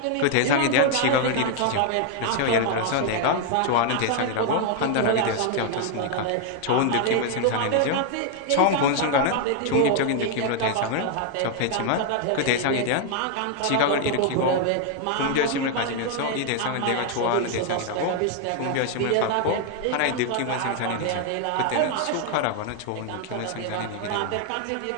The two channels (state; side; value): different; both; correlation 0.00